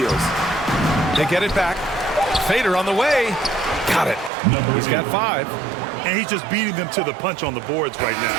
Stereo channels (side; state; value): left; drops out; at 4.3 s